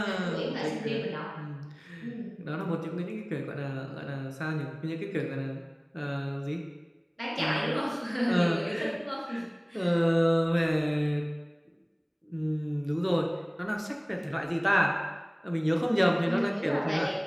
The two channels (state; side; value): identical; both; correlation 1.00